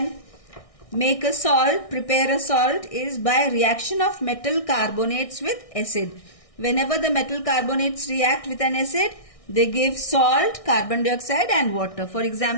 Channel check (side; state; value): right; late; 1.6 ms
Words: make a salt, prepare a salt, is by reaction of metal carbonates with acid. Whenever the metal carbonates react with an acid, they give salt, carbon dioxide and water. For